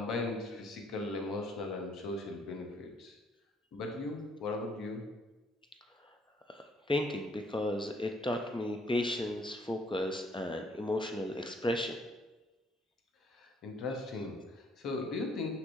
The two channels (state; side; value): normal; both; correlation 0.65